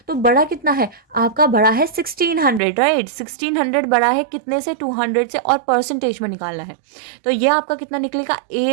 तो बड़ा कितना है आपका, बड़ा है 1600, राइट। 1600 बड़ा है कितने से, 200 से, और परसेंटेज में निकालना है, तो ये आपका कितना निकलेगा,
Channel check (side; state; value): left; drops out; at 2.6 s